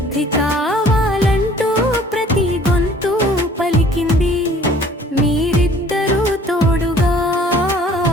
కావాలంటూ ప్రతి గొంతు పలికింది. మీరిద్దరూ తోడుగా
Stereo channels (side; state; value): both; normal; correlation 0.53